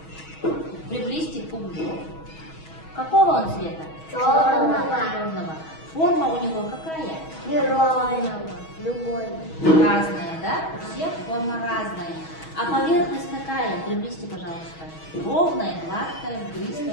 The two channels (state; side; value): late; right; 6.3 ms